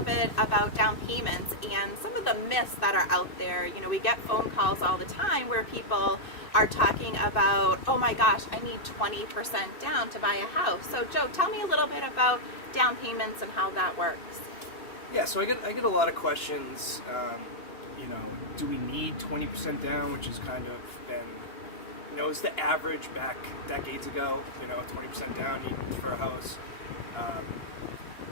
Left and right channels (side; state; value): right; late; 2.6 ms